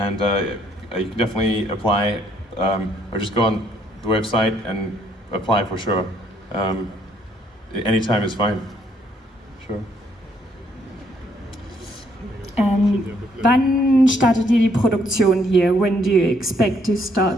You can definitely apply, or just go on the website and apply for sure. Anytime is fine. Sure. Wann startet ihr die Produktion hier? When do you expect to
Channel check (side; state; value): both; normal; correlation 0.68